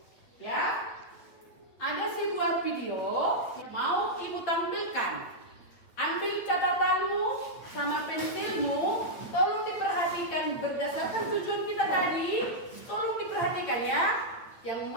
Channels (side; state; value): right; late; 8.5 ms